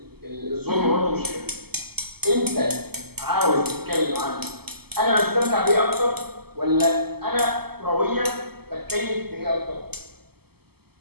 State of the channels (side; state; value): left; late; 0.96 ms